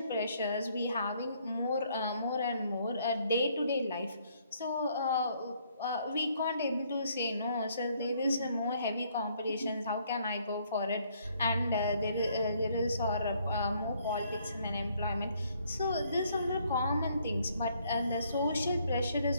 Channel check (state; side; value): inverted; both; correlation -0.67